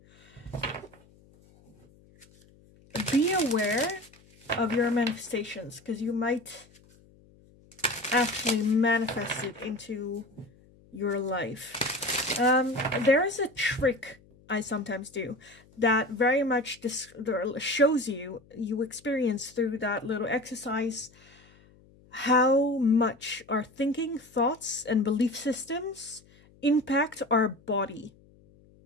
be aware of your manifestations, because you might actually manifest it into your life. There is a trick I sometimes do that very much shows you experience through that little exercise how much our thinking, thoughts, and belief systems impact our body.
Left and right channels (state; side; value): noise; left; hum, 28 dB below the sound